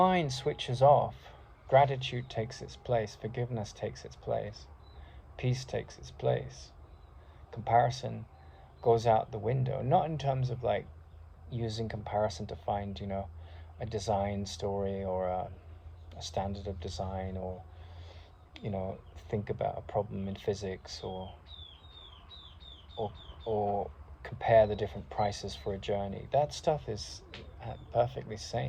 switches off, gratitude takes its place, forgiveness takes its place, peace takes its place. Comparison goes out the window, not in terms of like using comparison to find, you know, a design story or a standard of design, or, you know, think about a problem in physics, or compare the different prices for a journey. That stuff is perfectly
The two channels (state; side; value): identical; both; correlation 1.00